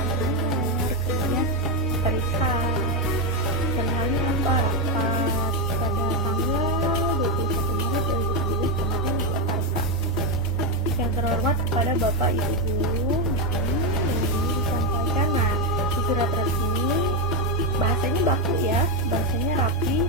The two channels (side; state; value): both; normal; correlation 0.08